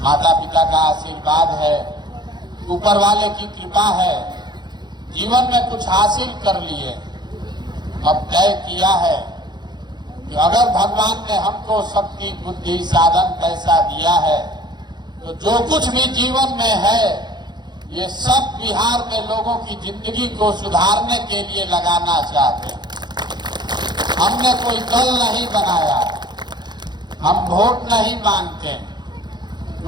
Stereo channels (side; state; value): left; late; 0.21 ms